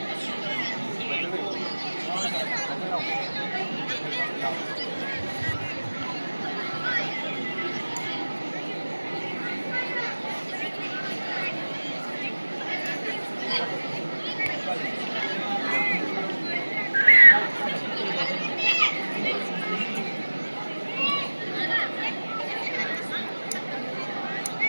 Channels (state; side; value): inverted; both; correlation -1.00